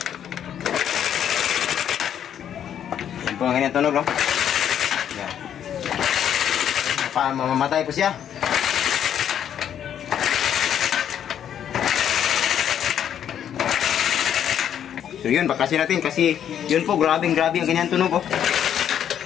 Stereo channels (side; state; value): right; quieter; 9.5 dB